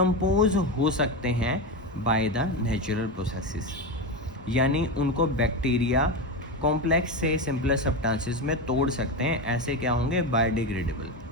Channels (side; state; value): both; normal; correlation 0.16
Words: हो सकते हैं बाय द नेचुरल प्रोसेसेस, यानी उनको बैक्टीरिया कॉम्प्लेक्स से सिंपलर सब्सटेंसेस में तोड़ सकते हैं, ऐसे क्या होंगे, बायोडिग्रेडेबल।